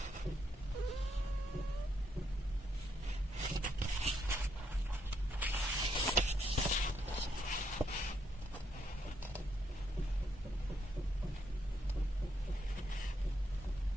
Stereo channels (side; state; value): both; normal; correlation 0.75